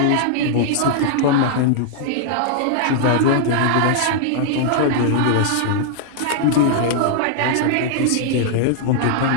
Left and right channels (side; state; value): both; different; correlation -0.01